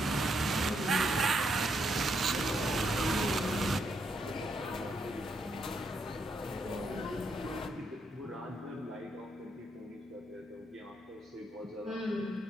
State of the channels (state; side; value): normal; both; correlation 0.77